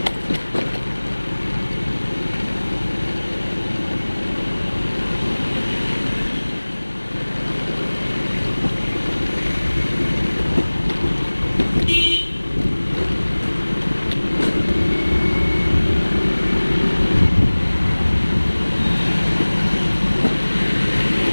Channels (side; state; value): both; inverted; correlation -1.00